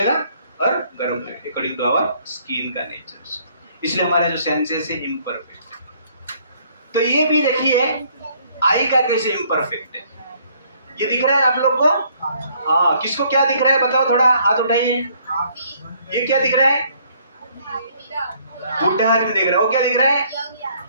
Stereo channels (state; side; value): inverted; both; correlation -0.63